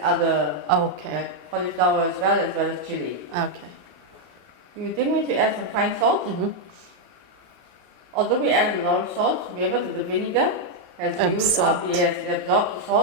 Okay. cauliflower as well as chili. Okay. You then need to add some fine salt. Although we add a lot of salt, remember that the vinegar has used up, yes, it absorbs the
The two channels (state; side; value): late; left; 34 ms